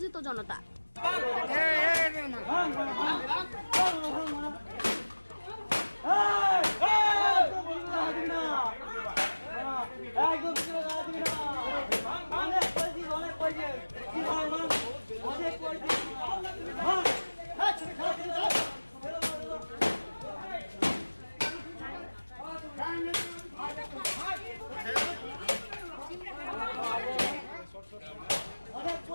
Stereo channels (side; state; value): both; inverted; correlation -1.00